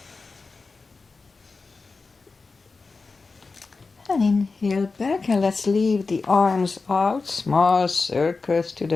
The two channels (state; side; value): quieter; right; 4.1 dB